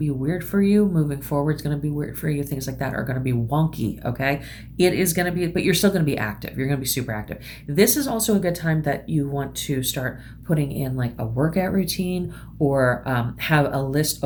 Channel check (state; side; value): identical; both; correlation 1.00